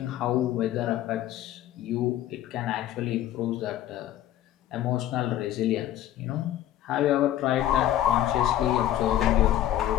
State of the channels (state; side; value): quieter; right; 12.6 dB